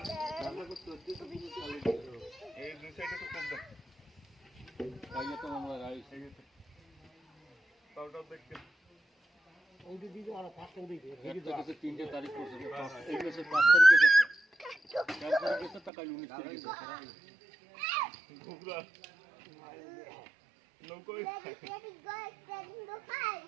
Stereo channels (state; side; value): drops out; left; at 15.9 s